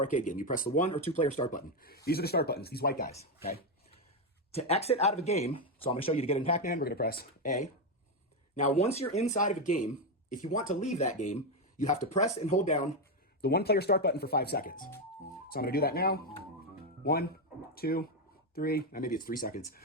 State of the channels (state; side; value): normal; both; correlation 0.07